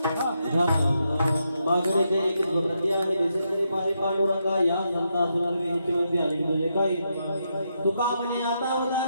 मागणे जे एक प्रती आहे दिसणे माझे पांडुरंगा, या संता असणार मी हिच्यामध्ये आणि तुझे काही तुका म्हणे आता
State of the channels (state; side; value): inverted; both; correlation -0.82